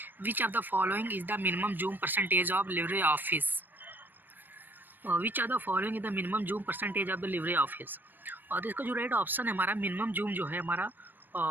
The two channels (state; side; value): late; left; 0.092 ms